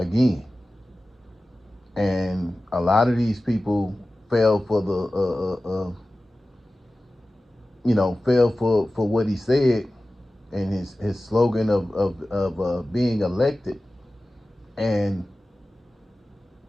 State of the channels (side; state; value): both; normal; correlation 0.95